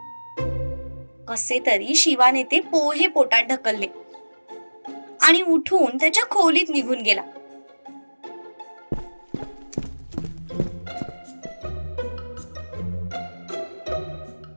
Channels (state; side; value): inverted; both; correlation -1.00